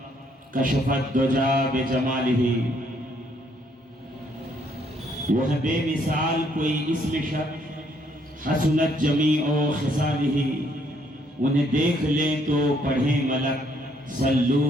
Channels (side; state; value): both; normal; correlation 0.69